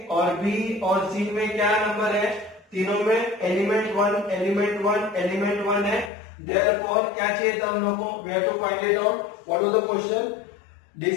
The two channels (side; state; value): right; drops out; at 6.1 s